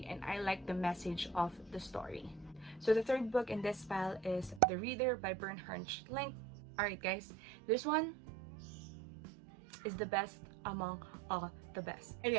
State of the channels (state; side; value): drops out; left; at 4.6 s